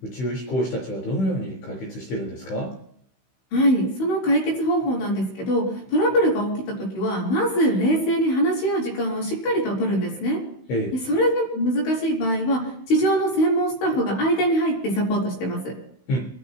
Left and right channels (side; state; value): right; late; 16 ms